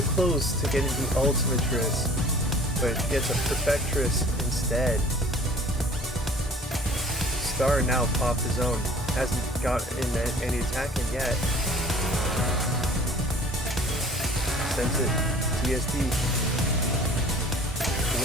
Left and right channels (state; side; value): normal; both; correlation 0.49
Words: close to getting the Ultimatress, but gets a Perfectress instead. Star now popped his own. Hasn't got in any attacking yet. Sends it TSD.